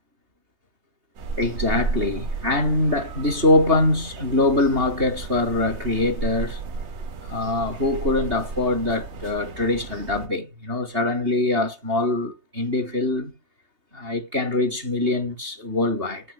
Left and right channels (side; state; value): left; late; 3.3 ms